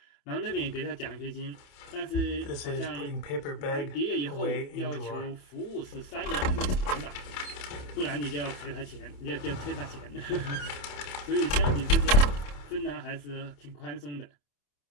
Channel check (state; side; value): late; right; 28 ms